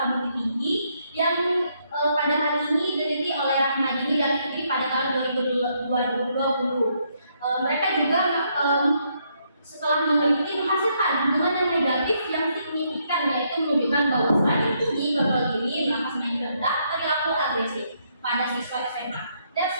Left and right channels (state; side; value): inverted; both; correlation -0.74